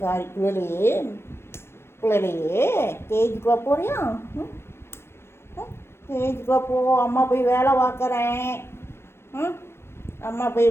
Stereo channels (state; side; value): late; right; 0.12 ms